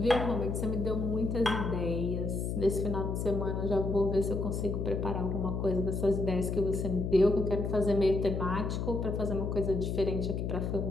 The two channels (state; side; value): noise; left; hum, 2 dB below the sound